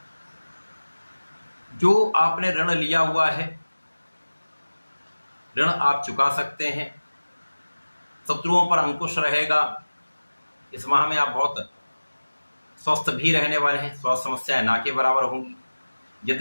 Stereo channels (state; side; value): inverted; both; correlation -1.00